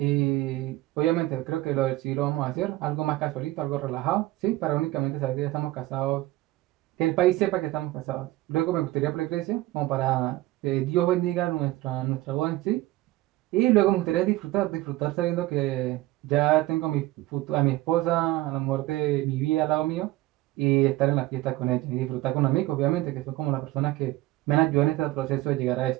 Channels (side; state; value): left; quieter; 17.5 dB